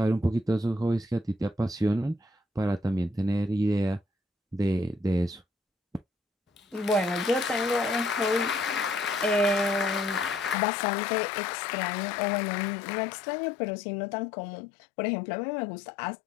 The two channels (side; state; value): right; drops out; at 10.6 s